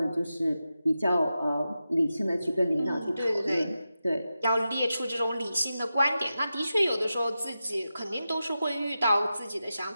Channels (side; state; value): both; inverted; correlation -0.91